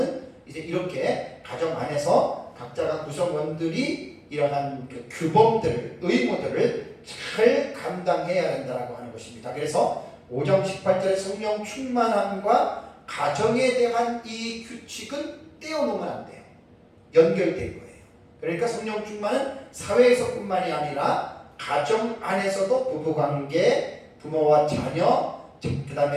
이제 이렇게 가정 안에서 각자가 구성원들이 이러한 그 규범들을, 의무들을 잘 감당해야 된다고 하는 것입니다. 그래서 5장 18절의 성령 충만함과 가정에 대한 이 규칙은 떼어놓으면 안 돼요. 연결된 거예요. 그러니까 성령 충만은 사회에서뿐만이 아니라 가정 안에서도 부부관계, 부모와 자녀, 그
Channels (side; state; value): both; identical; correlation 1.00